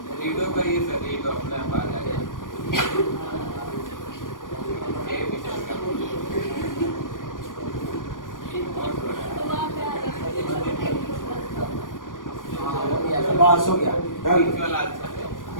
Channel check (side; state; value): right; late; 0.89 ms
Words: रीडो करिए सर, रीडो अपने आप आ जाएगा। बस हो गया,